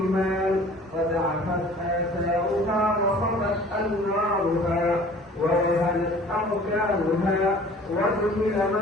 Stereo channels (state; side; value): normal; both; correlation 0.48